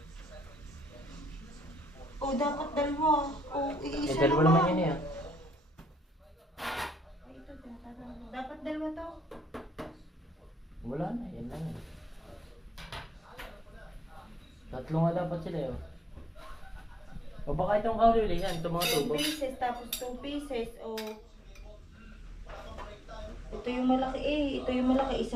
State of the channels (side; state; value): both; normal; correlation 0.77